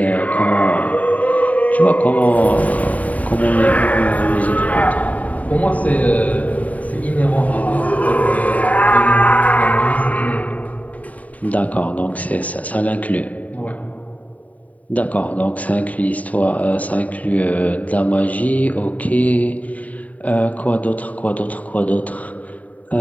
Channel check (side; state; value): right; late; 0.071 ms